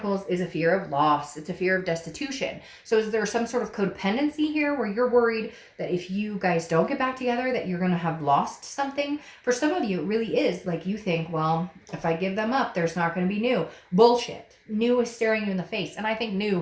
is a fear of loss. It's a fear of destitution. So is there some sort of codependency here where you're worried that if you guys don't get back together that you're going to have lost something? For some of you, it really is. Like, you think, well, if I give them up, there's not going to be new. Bullshit. New is staring you in the face. And I think new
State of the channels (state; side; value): identical; both; correlation 1.00